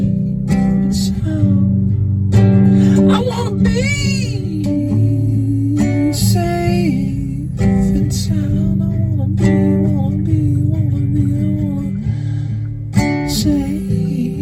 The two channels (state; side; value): identical; both; correlation 1.00